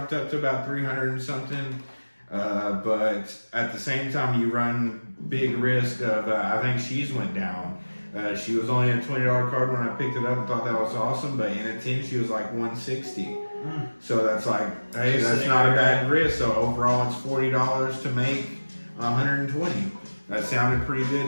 up to about 300 and something. But at the same time, you run big risk of, I think she's went down. She was only a $20 card when I picked it up and thought that was awesome, but in a 10 she was like 160. So that's like, hey, that's not a bad risk. So overall it's $40 to make 120. That sounded pretty good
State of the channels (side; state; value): both; inverted; correlation -1.00